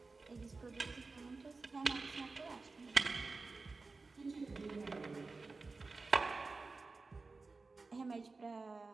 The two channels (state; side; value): quieter; left; 3.9 dB